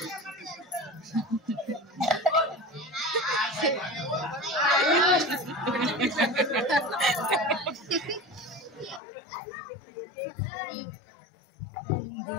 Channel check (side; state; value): right; drops out; at 9.0 s